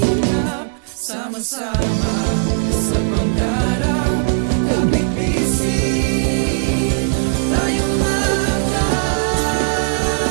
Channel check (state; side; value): silent; left; digital silence